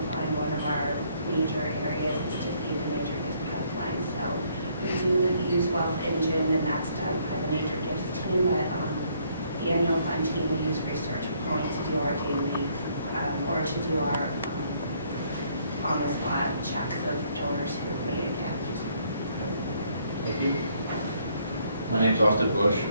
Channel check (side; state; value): both; inverted; correlation -0.67